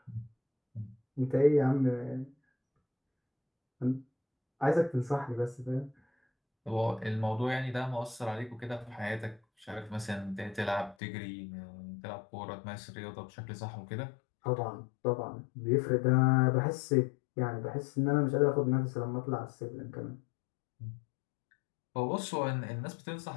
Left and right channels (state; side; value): drops out; right; at 11.0 s